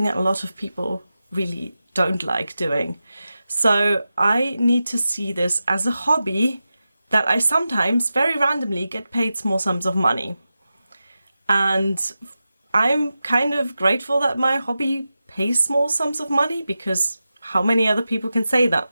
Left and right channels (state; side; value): inverted; both; correlation -0.93